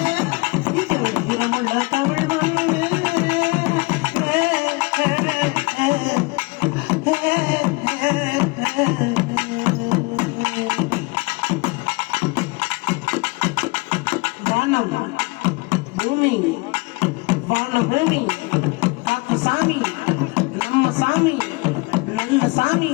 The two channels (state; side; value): quieter; right; 26.0 dB